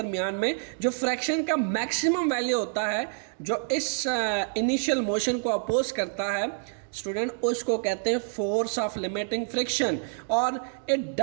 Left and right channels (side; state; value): left; silent; digital silence